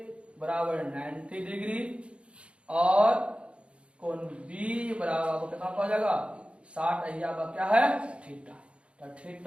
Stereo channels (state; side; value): late; left; 0.059 ms